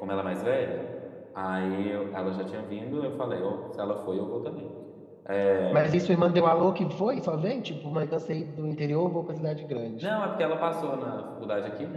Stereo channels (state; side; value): identical; both; correlation 1.00